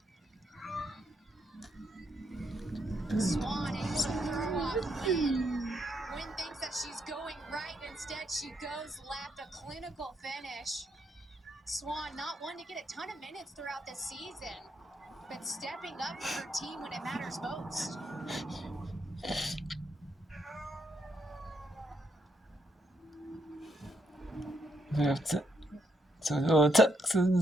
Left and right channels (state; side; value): normal; both; correlation 0.77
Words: Swan able to throw off Wynn. Wynn thinks that she's going right. Instead, she goes left. A clinical finish. Swan not one to get a ton of minutes throughout the season, but stepping up for her team when it matters most. So